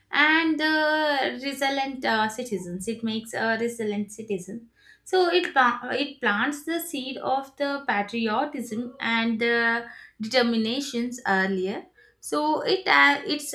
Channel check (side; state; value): both; identical; correlation 1.00